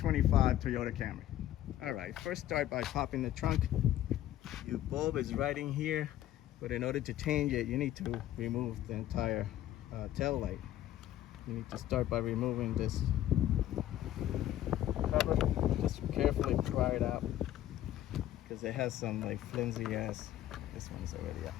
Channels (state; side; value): quieter; right; 12.9 dB